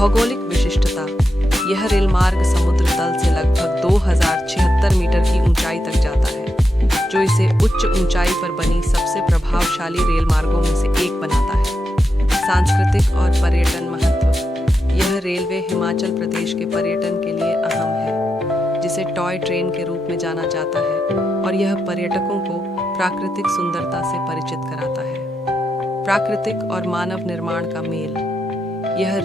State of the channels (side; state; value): both; normal; correlation 0.86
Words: विशिष्टता: यह रेल मार्ग समुद्र तल से लगभग 2076 मीटर की ऊंचाई तक जाता है, जो इसे उच्च ऊंचाई पर बनी सबसे प्रभावशाली रेल मार्गों में से एक बनाता है। सांस्कृतिक और पर्यटन महत्व: यह रेलवे हिमाचल प्रदेश के पर्यटन के लिए अहम है, जिसे टॉय ट्रेन के रूप में जाना जाता है, और यह पर्यटकों को प्राकृतिक सुंदरता से परिचित कराता है। प्राकृतिक और मानव निर्माण का मेल: यह